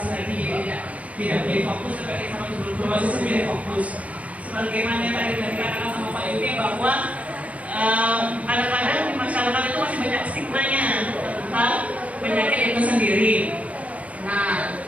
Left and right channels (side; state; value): left; late; 0.067 ms